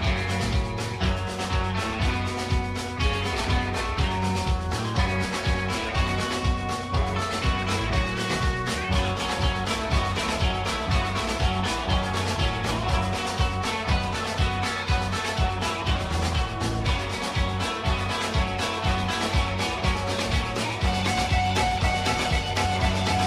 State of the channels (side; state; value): both; identical; correlation 1.00